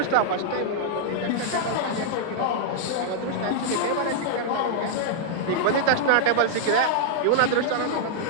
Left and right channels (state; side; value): different; both; correlation -0.02